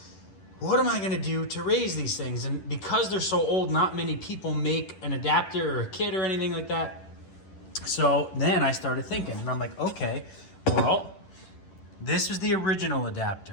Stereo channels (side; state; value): right; late; 11 ms